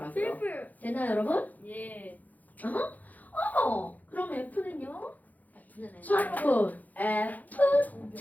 됐나요 여러분? 예. 어머 그럼 F는요? F는 자 여러분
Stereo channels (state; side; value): late; right; 0.080 ms